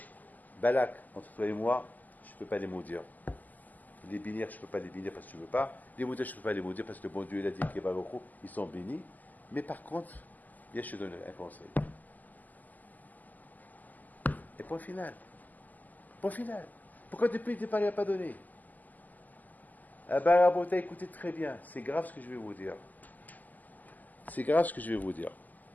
Balak, entre toi et moi, je ne peux pas les maudire. Les bénir, je ne peux pas les bénir parce que tu ne veux pas. Les maudire, je ne peux pas les maudire parce que le bon Dieu, il a dit que Baruch Hu, ils sont bénis. Mais par contre, viens, je te donne un conseil. Et point final. Pourquoi depuis le départ, il n'a pas donné? Ah ben, Rabota, écoutez très bien. C'est grave ce que je vais vous dire.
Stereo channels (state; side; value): late; right; 0.082 ms